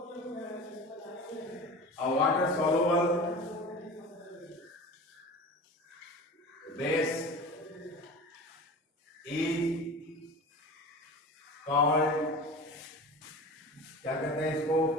base is called, क्या कहते हैं इसको?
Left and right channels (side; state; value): both; normal; correlation 0.34